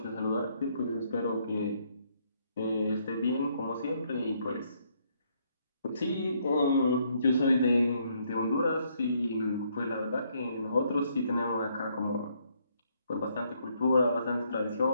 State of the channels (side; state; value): both; inverted; correlation -0.71